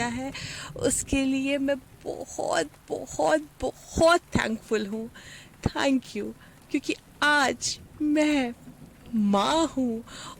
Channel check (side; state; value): both; identical; correlation 1.00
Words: है उसके लिए मैं बहुत बहुत बहुत थैंकफुल हूँ। थैंक यू क्योंकि आज मैं माँ हूँ